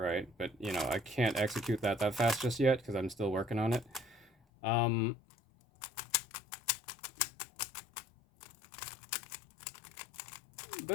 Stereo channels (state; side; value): drops out; right; at 4.3 s